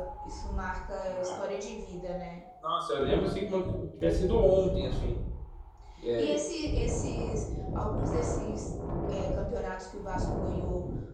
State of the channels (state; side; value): identical; both; correlation 1.00